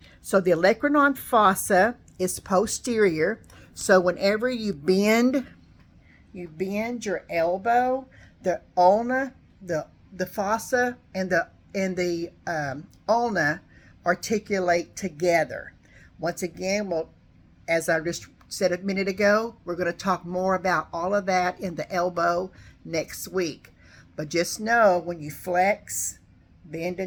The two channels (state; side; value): identical; both; correlation 1.00